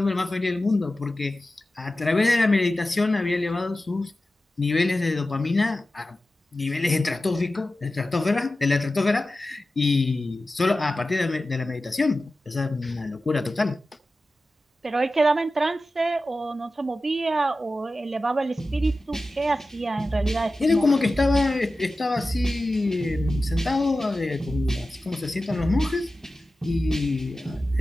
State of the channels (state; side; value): normal; both; correlation 0.94